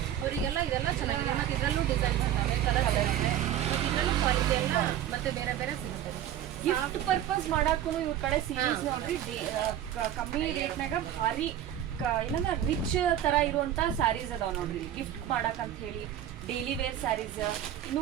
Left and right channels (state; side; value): quieter; left; 11.3 dB